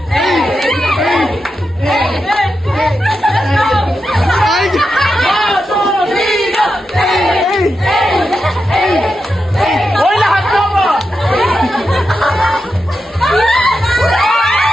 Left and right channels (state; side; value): normal; both; correlation 0.88